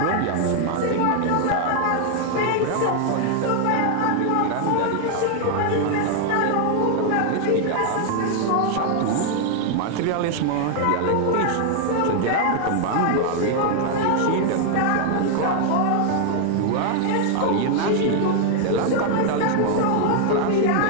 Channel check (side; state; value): both; different; correlation 0.00